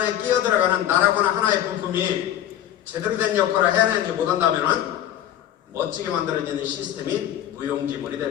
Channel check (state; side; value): quieter; right; 11.6 dB